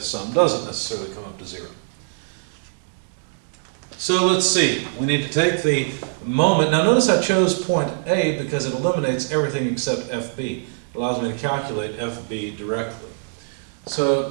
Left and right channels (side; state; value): left; silent; digital silence